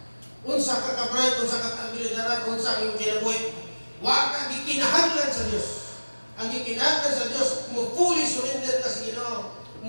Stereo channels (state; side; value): inverted; both; correlation -1.00